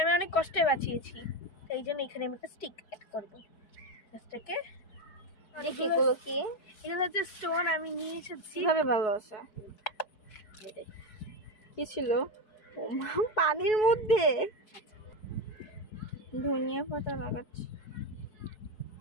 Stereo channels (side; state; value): right; late; 4.7 ms